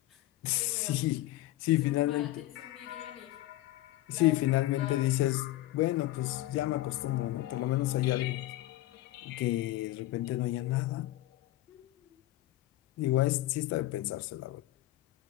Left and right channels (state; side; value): quieter; right; 16.2 dB